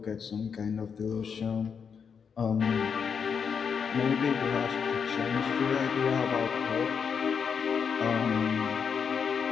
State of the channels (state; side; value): quieter; right; 6.5 dB